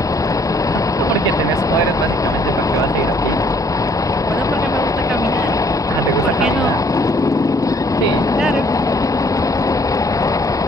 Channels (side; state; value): both; normal; correlation 0.62